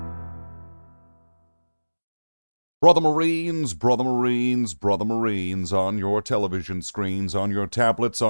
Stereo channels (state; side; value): inverted; both; correlation -1.00